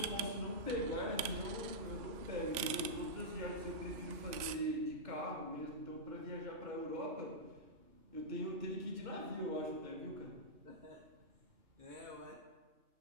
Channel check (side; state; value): left; late; 3.4 ms